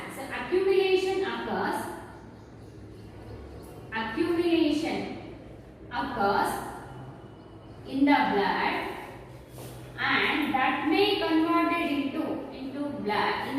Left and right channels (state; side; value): identical; both; correlation 1.00